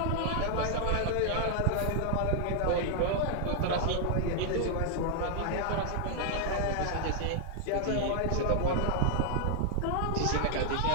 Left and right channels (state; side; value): different; both; correlation 0.00